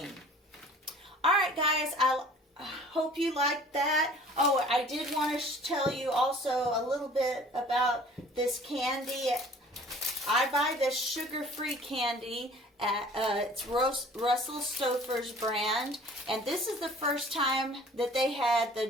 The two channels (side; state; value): both; normal; correlation 0.49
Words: All right, guys, I hope you liked that. Oh, I did want to tell you also a little bit about this candy. I buy this sugar-free candy at it's Russell Stover's brand, and this is the first time that they had